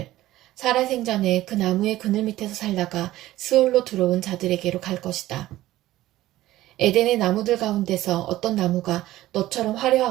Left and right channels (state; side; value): quieter; left; 15.5 dB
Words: 살아생전에 그 나무의 그늘 밑에서 살다가 스올로 들어온 자들에게로 갈 것이다. 에덴의 나무들 가운데서 어떤 나무가 너처럼